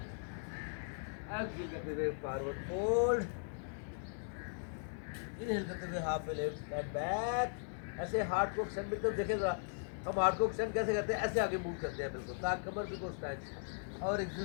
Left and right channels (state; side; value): silent; right; digital silence